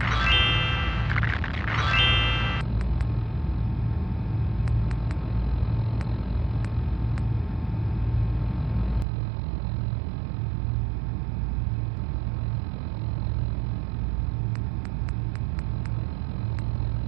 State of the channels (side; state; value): left; drops out; at 9.1 s